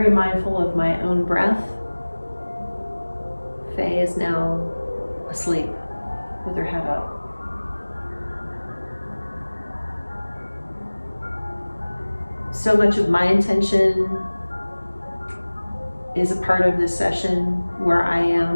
mindful of my own breath. Faye is now asleep. with her head up. So much of my intention is a part of this session where I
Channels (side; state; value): both; inverted; correlation -1.00